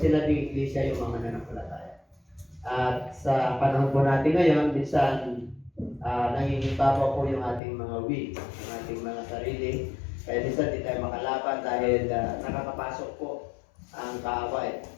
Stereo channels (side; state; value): right; drops out; at 7.6 s